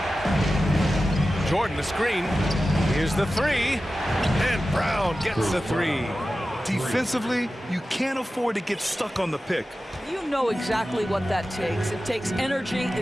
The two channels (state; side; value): normal; both; correlation 0.94